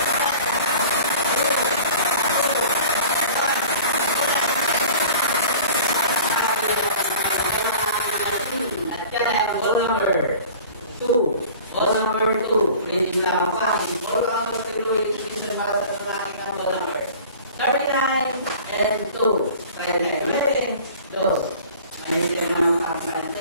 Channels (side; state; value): both; inverted; correlation -0.43